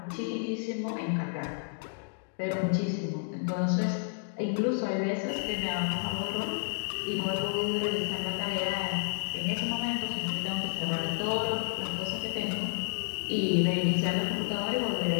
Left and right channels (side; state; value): right; silent; digital silence